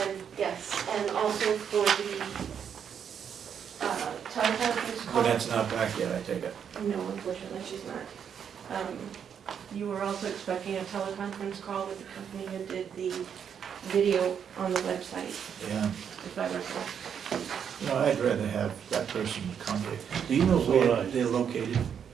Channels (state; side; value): quieter; left; 7.9 dB